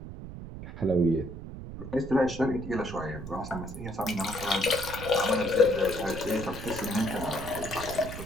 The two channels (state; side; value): noise; right; rumble, 10 dB below the sound